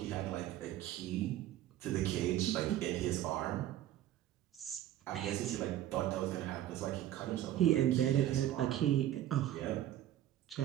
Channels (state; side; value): quieter; left; 12.8 dB